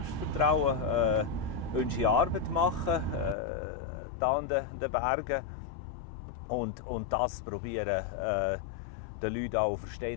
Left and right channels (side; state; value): right; drops out; at 3.4 s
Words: unsere Arbeit machen, da an den Bergen. Und das probieren, den Leuten auch